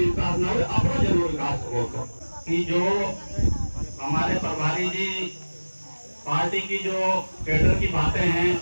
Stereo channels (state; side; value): inverted; both; correlation -1.00